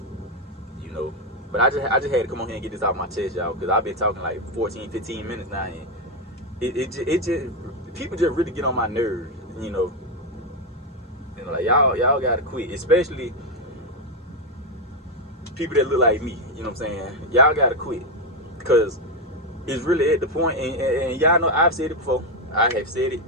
You know. But I just had to come on here and get this out of my chest, y'all, because I've been talking like 14, 15 minutes now, and it just people just really get on my nerves, you know. You know, like, y'all gotta quit, especially people that look like me. You know what I'm saying? Y'all gotta quit, because it's really at the point, and y'all know I've said it before. I have said it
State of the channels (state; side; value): normal; both; correlation 0.06